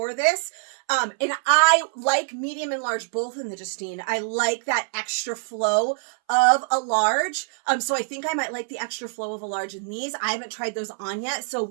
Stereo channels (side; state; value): left; silent; 60 dB below the other